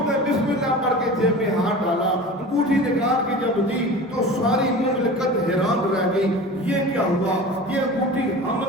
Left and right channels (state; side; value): normal; both; correlation 0.35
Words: نے بسم اللہ پڑھ کے جیب میں ہاتھ ڈالا، انگوٹھی نکال کے جب دی تو ساری مملکت حیران رہ گئی، یہ کیا ہوا؟ یہ انگوٹھی ہم